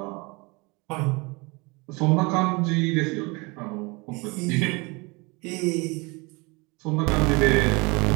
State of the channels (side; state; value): left; quieter; 26.9 dB